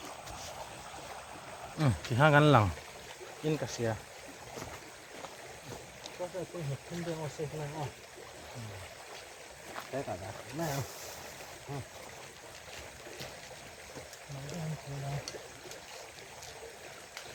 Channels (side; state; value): both; identical; correlation 1.00